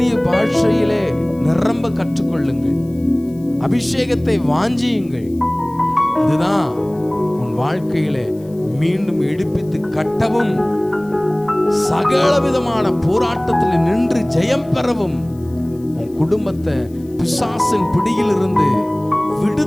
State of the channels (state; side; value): noise; left; hiss, 29 dB below the sound